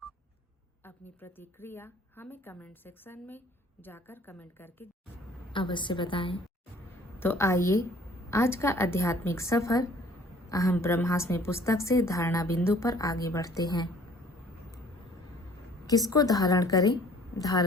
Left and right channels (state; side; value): normal; both; correlation 0.54